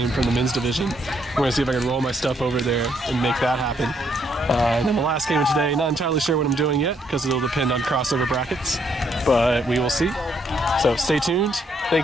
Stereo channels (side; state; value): both; normal; correlation 0.71